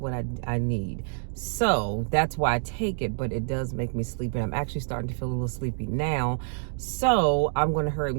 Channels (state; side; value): silent; left; digital silence